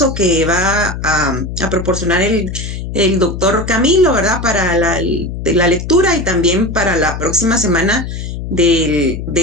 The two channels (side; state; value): left; noise; hum, 7 dB below the sound